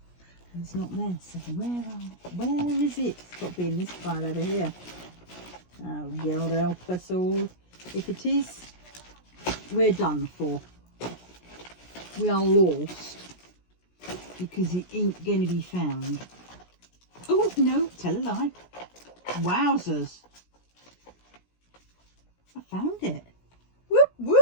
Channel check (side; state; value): right; late; 17 ms